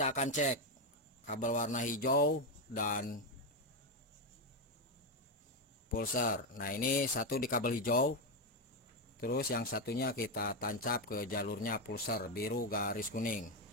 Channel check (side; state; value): both; normal; correlation 0.07